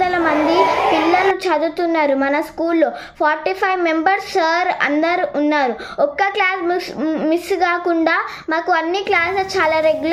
మంది పిల్లలు చదువుతున్నారు. మన స్కూల్లో 45 మెంబర్స్ సార్ అందరు ఉన్నారు. ఒక్క క్లాస్ మిస్ కాకుండా మాకు అన్ని క్లాసెస్ చాలా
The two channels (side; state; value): both; identical; correlation 1.00